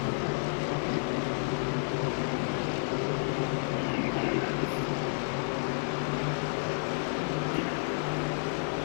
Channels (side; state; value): right; silent; digital silence